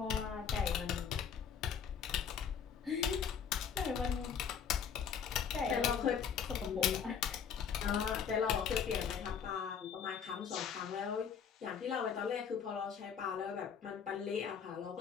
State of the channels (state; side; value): quieter; right; 7.3 dB